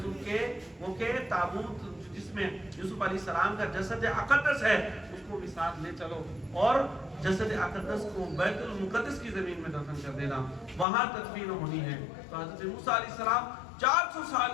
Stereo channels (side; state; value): right; drops out; at 10.9 s